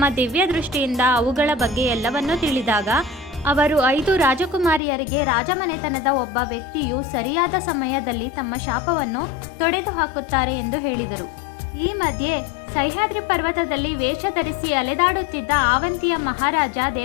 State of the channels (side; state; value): right; drops out; at 4.8 s